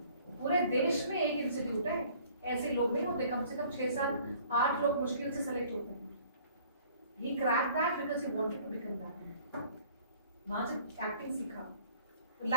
पूरे देश में एक इंस्टीट्यूट है, ऐसे लोग नहीं होते, कम से कम 6-7-8 लोग मुश्किल से सेलेक्ट होते हैं। He cracked that because he wanted to become that. वहां से एक्टिंग सीखा।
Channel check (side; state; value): both; inverted; correlation -0.54